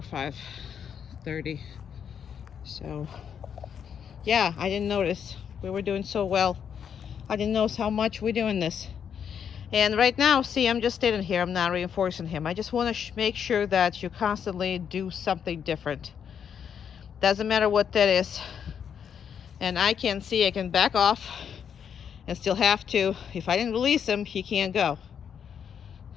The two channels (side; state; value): right; quieter; 7.9 dB